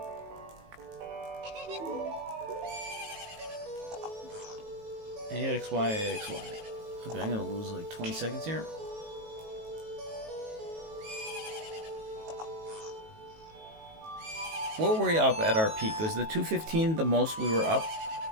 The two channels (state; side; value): late; left; 19 ms